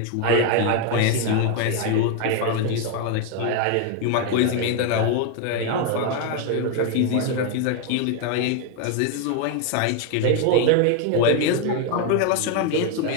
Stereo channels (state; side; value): different; both; correlation 0.01